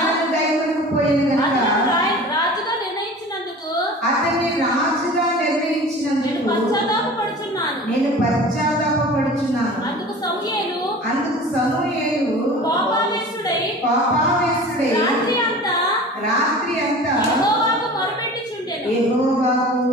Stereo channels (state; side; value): normal; both; correlation 0.39